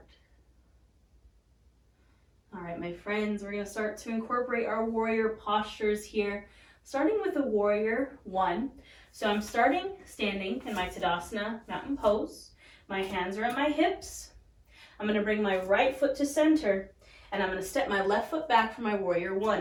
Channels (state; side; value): identical; both; correlation 1.00